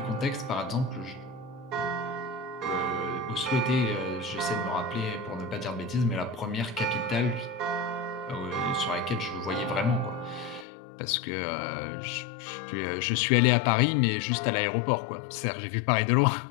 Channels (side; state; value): right; drops out; at 10.7 s